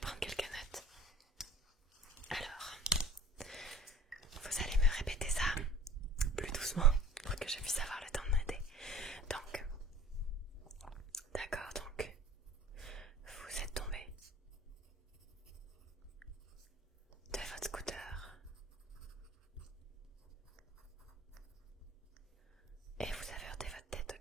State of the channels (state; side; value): normal; both; correlation 0.44